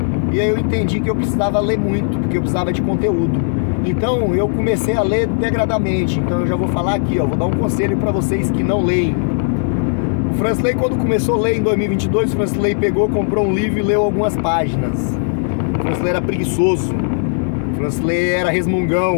E aí eu entendi que eu precisava ler muito, porque eu precisava de conteúdo. Então eu comecei a ler degradamente. Então eu já vou falar aqui, ó, vou dar um conselho para vocês que não leem. O Francisley, quando começou a ler em 2022, o Francisley pegou, comprou um livro e leu algumas páginas. O Francisley era preguiçoso. O Francisley era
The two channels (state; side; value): silent; right; digital silence